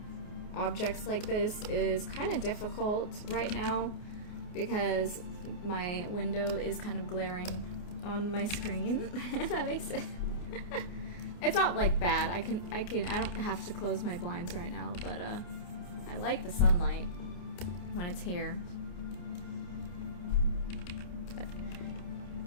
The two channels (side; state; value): right; late; 28 ms